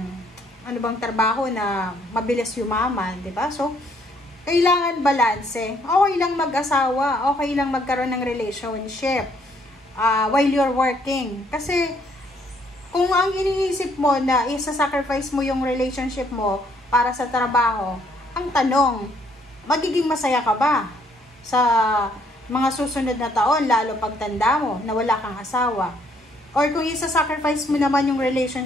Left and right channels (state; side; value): normal; both; correlation 0.67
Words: ano bang trabaho na mabilis yumaman. Diba? So, kailangan balanse. Okay lang mag-asawa. Okay lang magkaroon ng relationship while you're working. Kasi, kung ang iniisip mo na isa-sacrifice mo yung relationship mo para sa trabaho, ang tanong, magiging masaya ka ba sa mga susunod na taon, lalo pagtanda mo, na wala kang asawa? Or kung isa-sacrifice mo naman yung